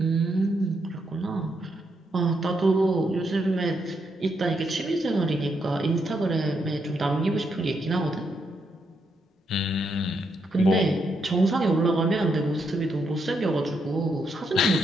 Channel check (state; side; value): normal; both; correlation 0.79